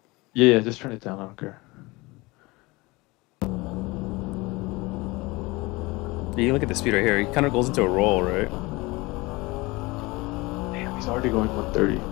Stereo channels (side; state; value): right; quieter; 23.2 dB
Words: Yeah, just turn it down. I don't care. You look at the speed right here. He kind of goes into a roll, right? Damn, he's already going 130.